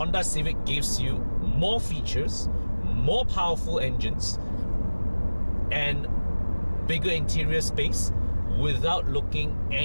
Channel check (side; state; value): both; inverted; correlation -1.00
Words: Civic gives you more features, more powerful engines, and bigger interior space without looking